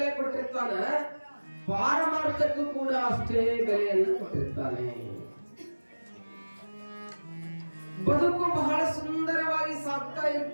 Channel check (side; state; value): both; inverted; correlation -1.00